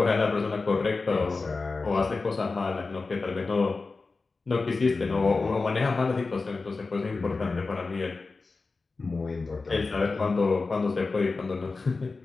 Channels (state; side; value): quieter; right; 3.9 dB